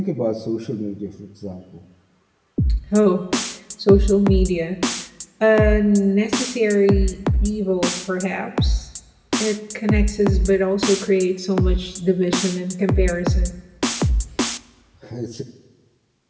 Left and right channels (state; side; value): identical; both; correlation 1.00